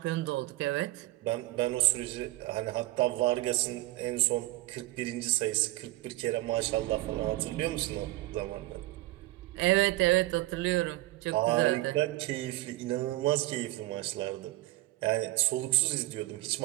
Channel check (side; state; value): left; quieter; 18.2 dB